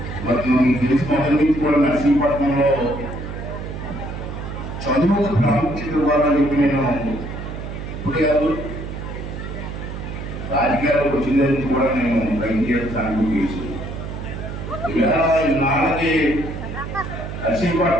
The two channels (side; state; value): right; noise; hum, 8 dB below the sound